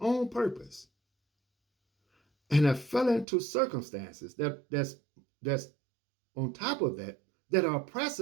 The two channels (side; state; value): left; drops out; at 3.2 s